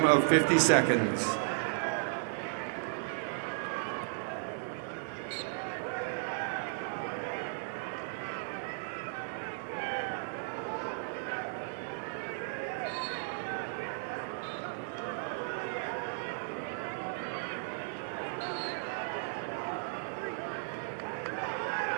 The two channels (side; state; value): left; silent; digital silence